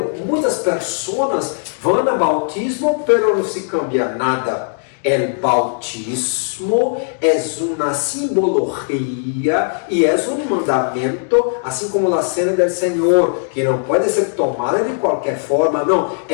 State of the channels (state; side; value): silent; right; digital silence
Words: muitas pessoas vão ao bautismo, pero não se cambia nada. O bautismo é uma simbologia e é um mandamento, assim como a cena do Senhor, que não pode ser tomada de qualquer forma. Não,